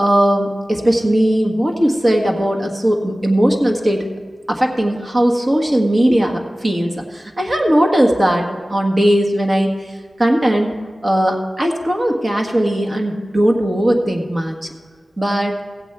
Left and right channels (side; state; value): both; normal; correlation 0.97